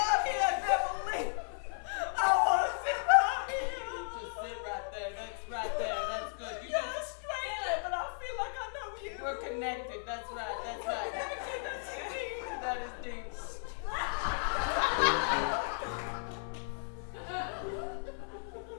here, Beverly. I want to sit right here. Just sit right there. That's right there. That's good. You You're a just, stranger, but I feel like I know you. we're connected. That's right. That's right. That is deep. this.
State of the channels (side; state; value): right; silent; 55 dB below the other